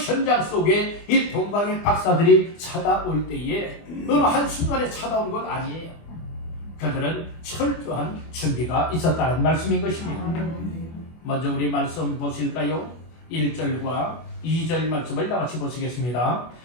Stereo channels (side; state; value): right; late; 24 ms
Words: 속에 이 동방의 박사들이 찾아올 때에 어느 한순간에 찾아온 것 아니에요. 그들은 철저한 준비가 있었다는 말씀인 것입니다. 먼저 우리 말씀 보실까요? 1절과 2절 말씀을 다같이 보시겠습니다.